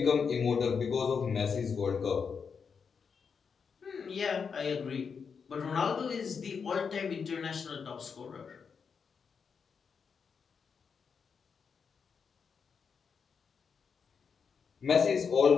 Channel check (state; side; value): quieter; right; 6.0 dB